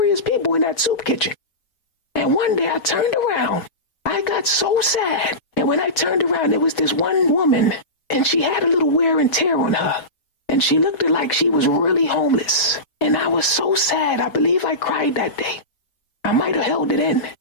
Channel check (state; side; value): late; right; 6.1 ms